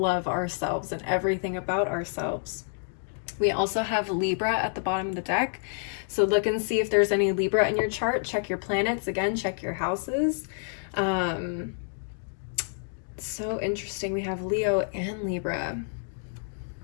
ourselves and everything about ourselves. We also have Libra at the bottom of the deck. So look and see if there's any Libra in your chart. Check your planets. Again, check your houses. So interesting. We have Leo and Libra.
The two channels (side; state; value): right; silent; digital silence